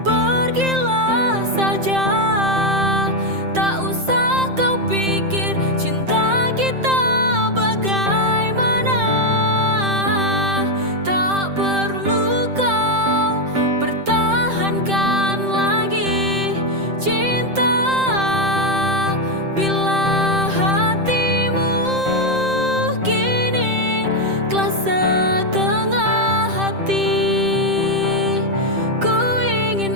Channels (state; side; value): late; left; 7.6 ms